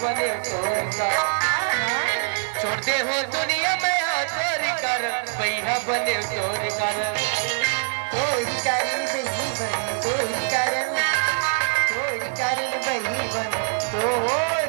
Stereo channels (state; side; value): silent; left; digital silence